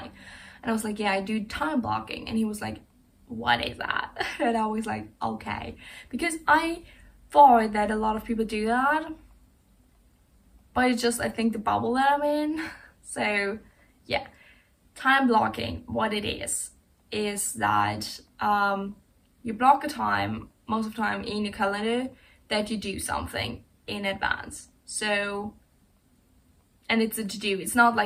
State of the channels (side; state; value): both; identical; correlation 1.00